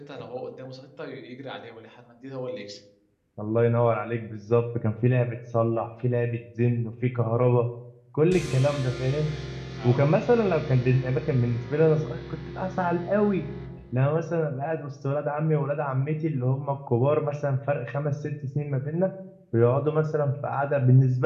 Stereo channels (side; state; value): both; identical; correlation 1.00